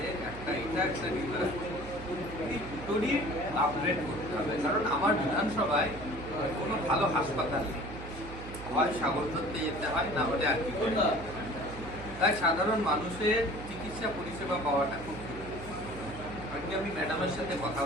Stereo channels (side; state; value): right; noise; hum, 12 dB below the sound